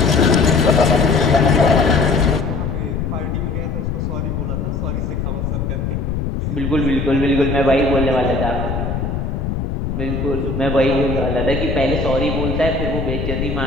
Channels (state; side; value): noise; left; rumble, 2 dB below the sound